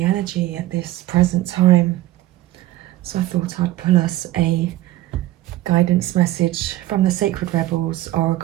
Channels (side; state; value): left; quieter; 15.8 dB